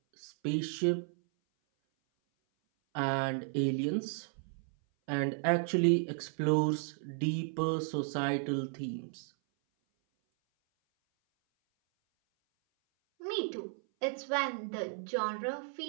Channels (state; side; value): silent; left; 55 dB below the other